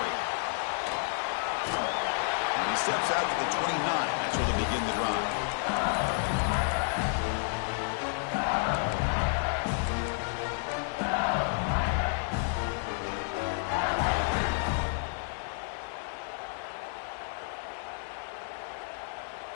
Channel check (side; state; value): right; silent; 57 dB below the other